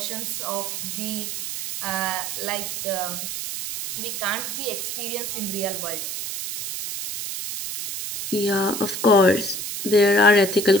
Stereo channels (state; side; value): noise; right; hiss, 5 dB below the sound